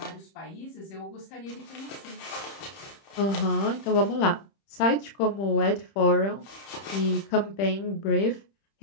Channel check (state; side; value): late; right; 30 ms